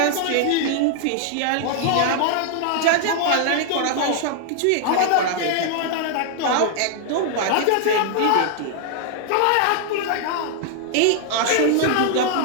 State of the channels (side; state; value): both; different; correlation 0.00